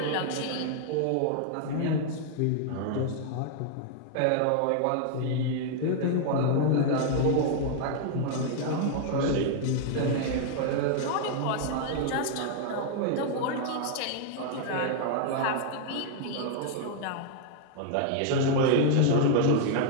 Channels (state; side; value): different; both; correlation 0.00